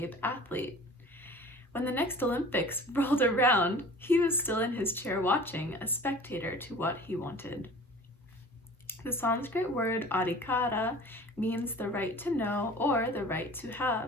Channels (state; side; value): normal; both; correlation 0.43